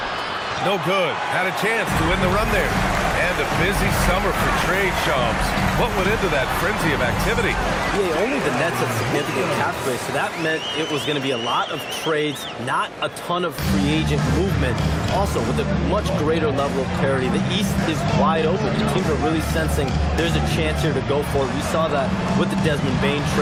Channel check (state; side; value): identical; both; correlation 1.00